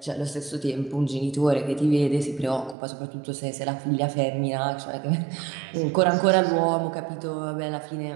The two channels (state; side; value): drops out; left; at 2.8 s